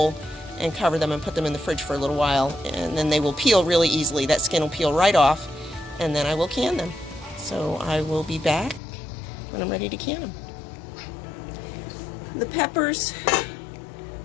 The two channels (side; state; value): right; drops out; at 8.8 s